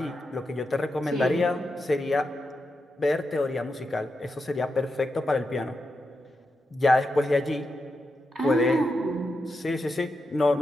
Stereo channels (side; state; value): both; normal; correlation 0.87